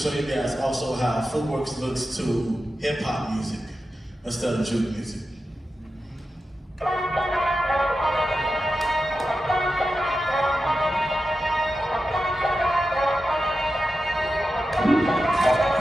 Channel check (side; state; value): both; normal; correlation 0.91